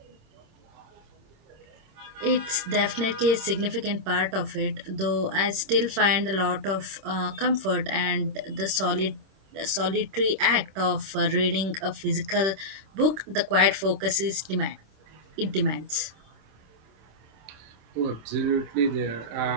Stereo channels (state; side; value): late; left; 26 ms